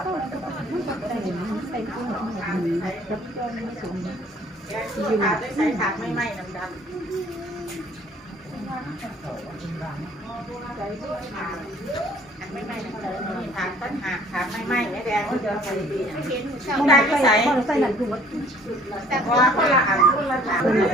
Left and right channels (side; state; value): both; normal; correlation 0.56